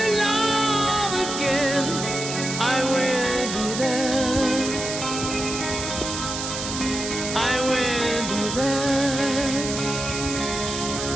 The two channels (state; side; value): noise; right; hiss, 5 dB below the sound